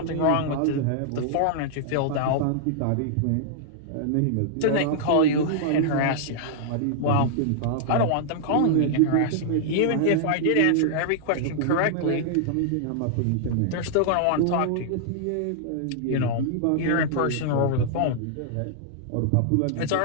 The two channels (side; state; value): both; different; correlation -0.01